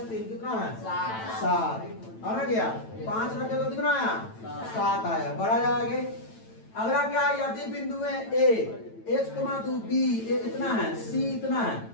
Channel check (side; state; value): right; late; 9.0 ms